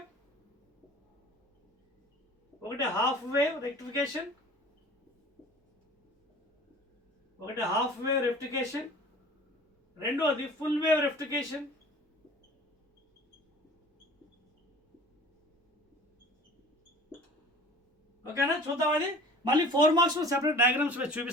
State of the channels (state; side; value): normal; both; correlation 0.44